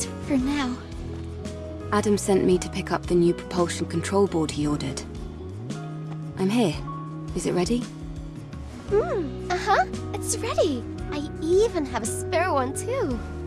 for now. Adam sent me to pick up the new propulsion control board he ordered. I'm here. Is it ready? Uh-huh. It's ready. I even have a spare one, too.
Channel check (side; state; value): both; identical; correlation 1.00